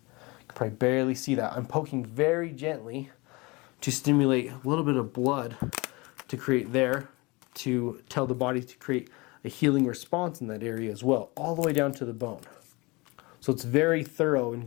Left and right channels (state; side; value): quieter; right; 25.4 dB